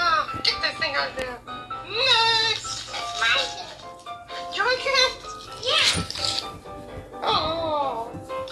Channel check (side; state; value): both; identical; correlation 1.00